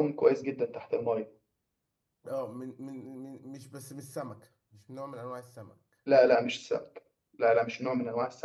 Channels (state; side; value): identical; both; correlation 1.00